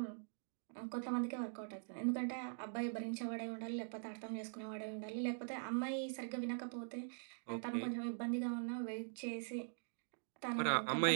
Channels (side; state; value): left; silent; digital silence